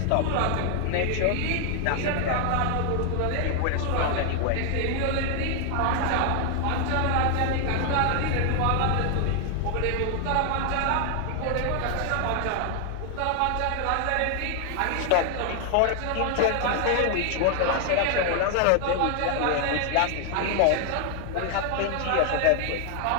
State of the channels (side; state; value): both; different; correlation 0.00